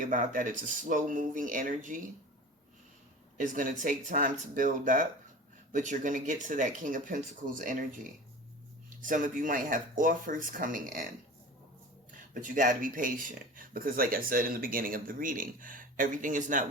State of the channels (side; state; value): both; normal; correlation 0.36